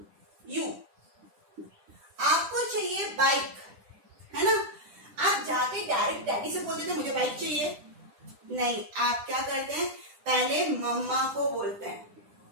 आपको चाहिए बाइक, है ना। आप जाके डायरेक्ट डैडी से बोलते थे मुझे बाइक चाहिए, नहीं, आप क्या करते हैं, पहले मम्मा को बोलते हैं,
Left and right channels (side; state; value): left; late; 10 ms